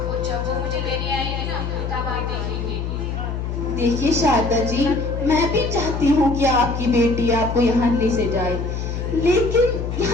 और जब वो मुझे लेने आएगी ना, तब आप देखेंगे। देखिए शारदा जी, मैं भी चाहती हूँ कि आपकी बेटी आपको यहाँ ले से जाए, लेकिन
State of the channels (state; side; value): noise; left; hum, 4 dB below the sound